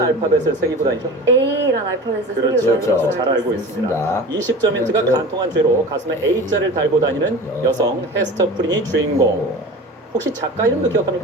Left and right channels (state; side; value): normal; both; correlation 0.35